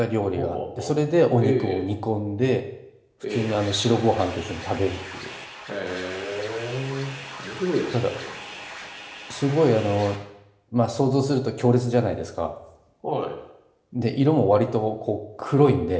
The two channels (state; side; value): identical; both; correlation 1.00